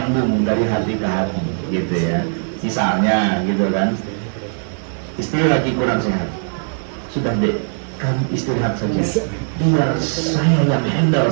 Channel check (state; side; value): silent; left; digital silence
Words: dari hati ke hati, gitu ya. Misalnya, gitu kan? Istri lagi kurang sehat, sudah deh, kamu istirahat saja, biar saya yang handle